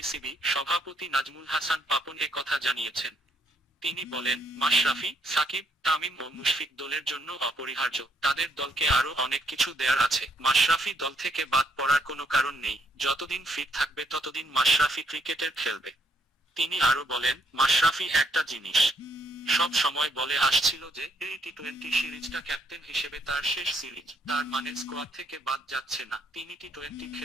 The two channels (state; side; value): normal; both; correlation 0.72